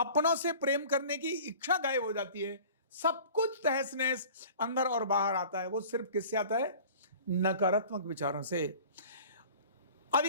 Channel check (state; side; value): inverted; both; correlation -0.43